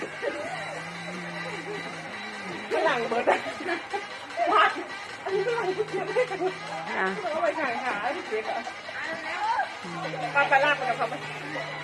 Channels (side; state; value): both; identical; correlation 1.00